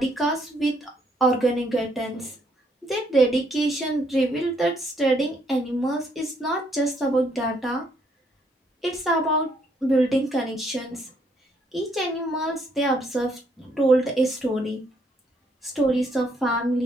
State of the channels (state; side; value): normal; both; correlation 0.70